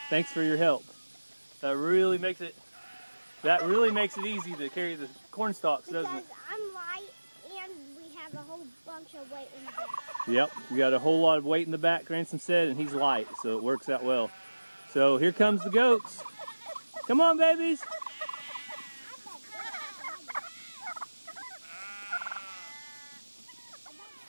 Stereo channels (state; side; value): inverted; both; correlation -1.00